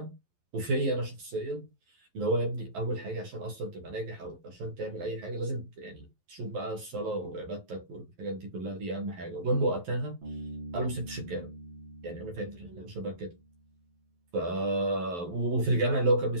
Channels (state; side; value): late; left; 11 ms